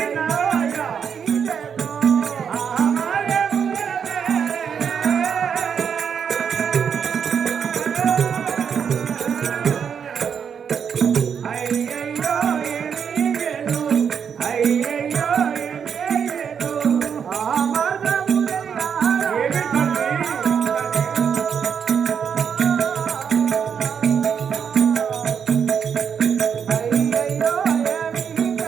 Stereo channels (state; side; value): quieter; left; 7.3 dB